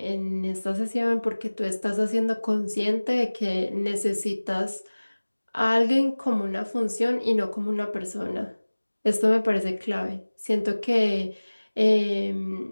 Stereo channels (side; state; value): both; inverted; correlation -1.00